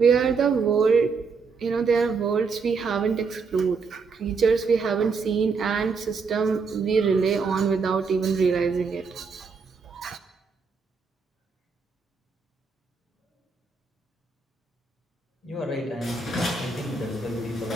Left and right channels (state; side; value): quieter; left; 4.9 dB